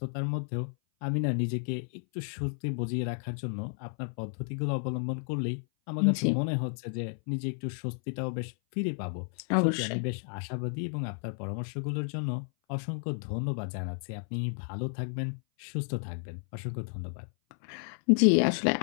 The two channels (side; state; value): right; silent; 56 dB below the other